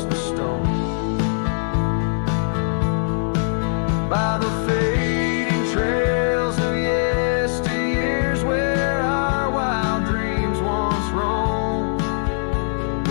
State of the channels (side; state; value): right; silent; 65 dB below the other